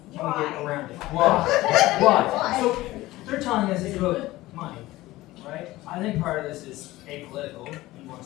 can we get around it? Why? Why? So, they're telling us it's about money, right? I think part of this is apolitical. He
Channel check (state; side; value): quieter; right; 17.7 dB